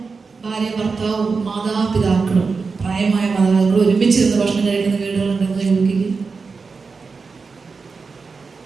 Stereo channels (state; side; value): quieter; left; 4.7 dB